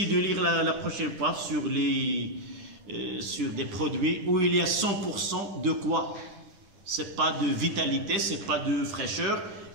de lire la prochaine fois sur des produits où il y a 100% de quoi? Ce n'est pas de vitalité, ce n'est pas de fraîcheur,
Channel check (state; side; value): late; left; 10 ms